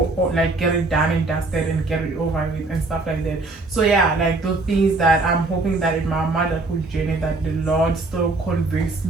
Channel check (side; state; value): left; quieter; 3.3 dB